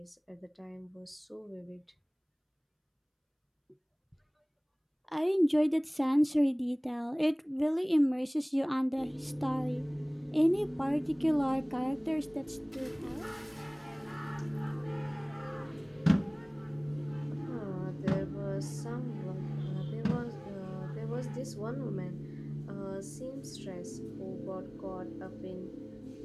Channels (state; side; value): identical; both; correlation 1.00